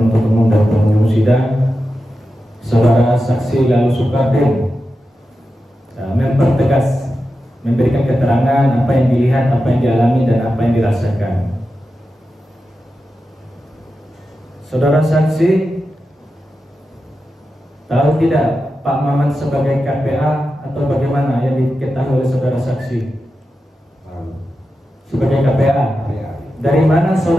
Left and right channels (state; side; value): normal; both; correlation 0.91